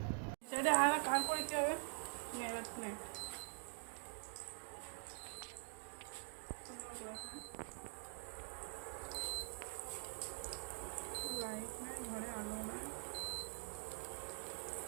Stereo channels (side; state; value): left; silent; digital silence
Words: সেটা আর কার করে দিতে হবে লাইট নাই, ঘরে আলো নাই।